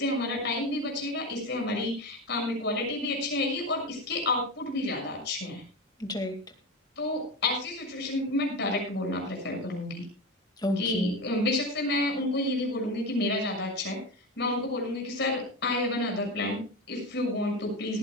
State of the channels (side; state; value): both; normal; correlation 0.21